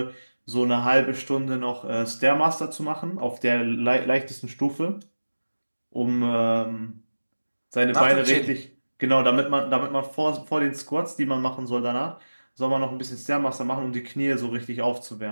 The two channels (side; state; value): both; inverted; correlation -1.00